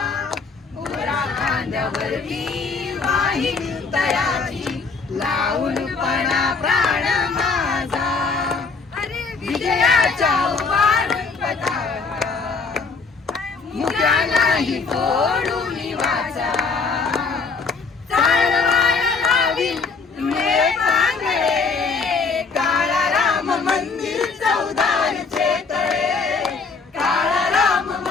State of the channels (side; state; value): right; quieter; 4.6 dB